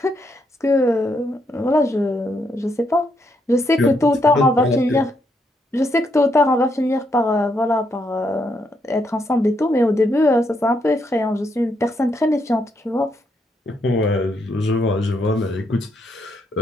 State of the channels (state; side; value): normal; both; correlation 0.77